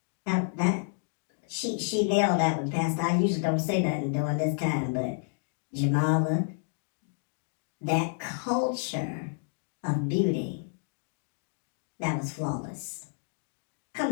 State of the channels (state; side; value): silent; right; digital silence